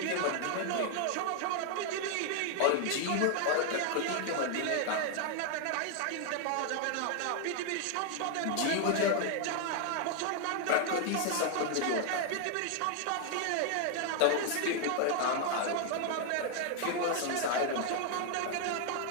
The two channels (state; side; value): different; both; correlation 0.00